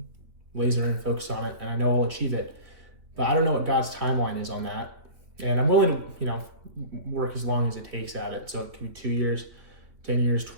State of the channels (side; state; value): left; late; 3.4 ms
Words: laser in and focus on it. And I know I'll achieve it, but I don't know what God's timeline is on that. And I'm willing to, work as long as it takes at it. So it can be 2 years, 10 years,